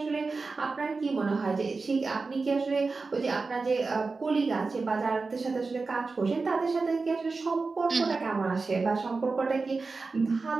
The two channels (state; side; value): quieter; left; 4.1 dB